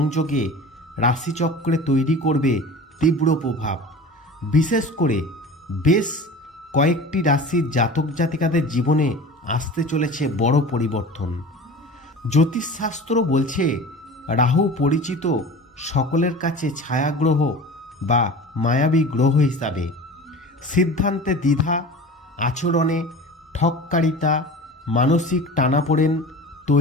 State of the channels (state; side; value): normal; both; correlation 0.37